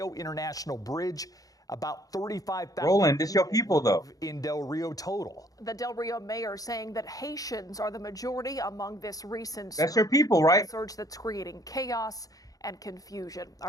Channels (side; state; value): right; late; 0.17 ms